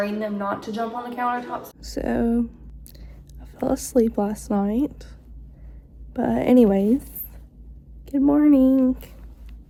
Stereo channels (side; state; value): both; identical; correlation 1.00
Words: them not to jump on the countertops. So I fell asleep last night, but anyways, good morning.